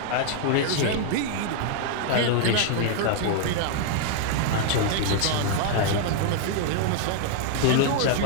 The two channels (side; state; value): both; different; correlation 0.00